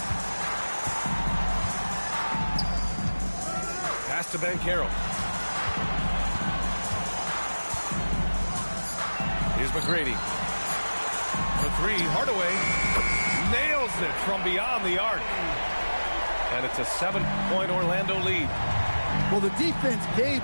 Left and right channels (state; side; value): inverted; both; correlation -1.00